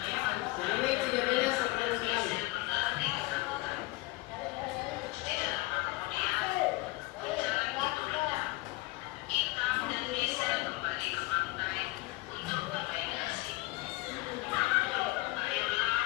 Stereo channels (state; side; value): quieter; right; 21.4 dB